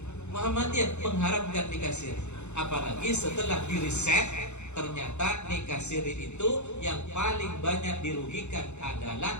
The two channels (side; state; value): right; late; 0.82 ms